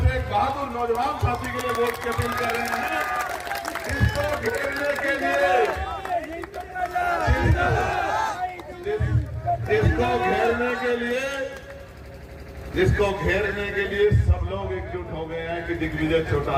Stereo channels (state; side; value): identical; both; correlation 1.00